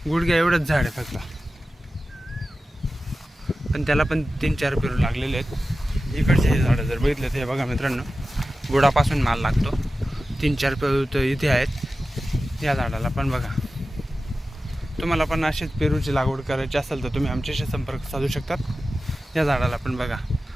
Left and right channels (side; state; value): both; normal; correlation 0.94